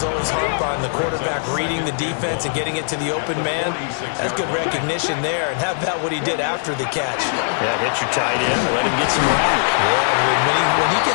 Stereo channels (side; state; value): right; silent; digital silence